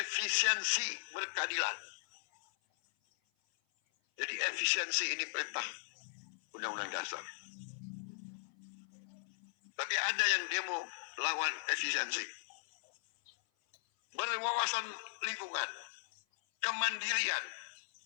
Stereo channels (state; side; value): silent; right; 52 dB below the other